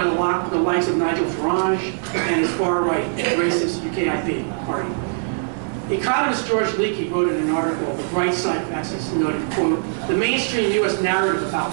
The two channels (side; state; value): left; silent; digital silence